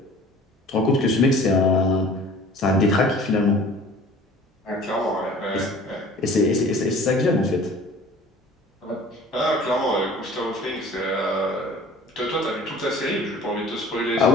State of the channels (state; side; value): normal; both; correlation 0.47